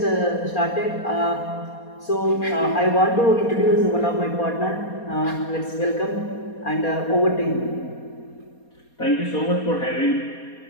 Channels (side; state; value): right; late; 4.2 ms